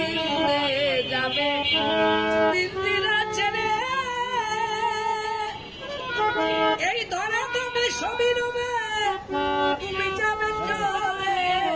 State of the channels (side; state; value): both; identical; correlation 1.00